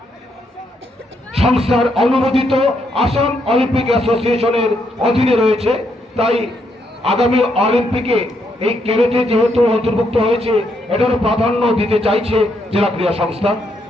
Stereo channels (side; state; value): both; normal; correlation 0.77